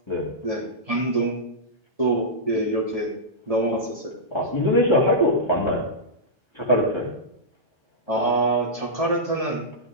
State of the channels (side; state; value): both; normal; correlation -0.13